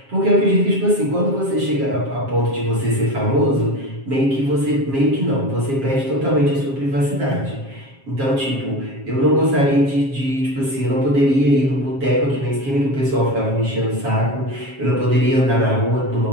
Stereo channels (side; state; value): left; late; 7.4 ms